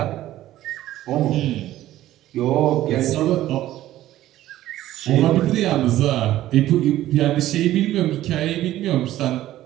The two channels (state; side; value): quieter; left; 14.2 dB